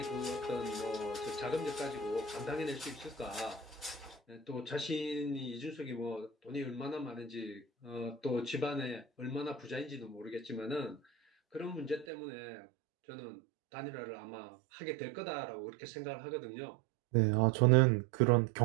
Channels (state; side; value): drops out; left; at 12.1 s